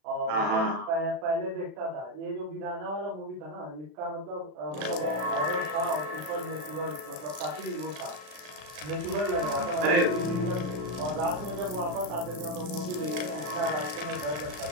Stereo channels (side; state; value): left; late; 36 ms